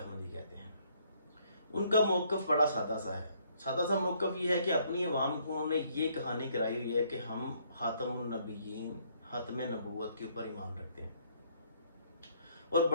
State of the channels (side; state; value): both; inverted; correlation -0.67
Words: कहते हैं, उनका मौक़िफ़ बड़ा सादा सा है। सादा सा मौक़िफ़ ये है कि अपनी अवाम को उन्होंने ये कहानी कराई हुई है कि हम ख़ातमुन नबिय्यीन, ख़ातमे नबूवत के ऊपर ईमान रखते हैं, और